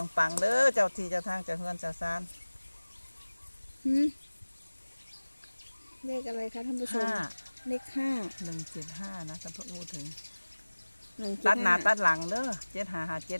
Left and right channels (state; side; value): inverted; both; correlation -1.00